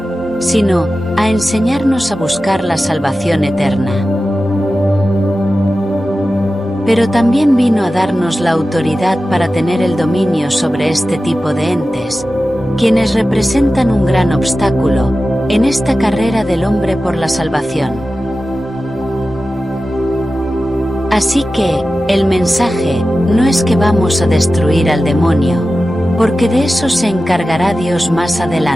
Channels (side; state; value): both; normal; correlation 0.94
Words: sino a enseñarnos a buscar la salvación eterna. Pero también vino a darnos la autoridad para tener el dominio sobre este tipo de entes, quienes representan un gran obstáculo en esta carrera del hombre por la salvación. Así que, el mensaje no es que vamos a destruir al demonio, porque de eso se encargará Dios más